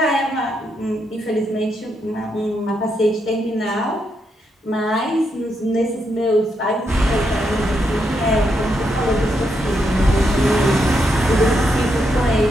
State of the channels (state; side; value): normal; both; correlation 0.80